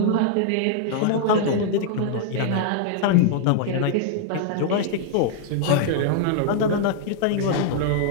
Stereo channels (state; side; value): different; both; correlation 0.00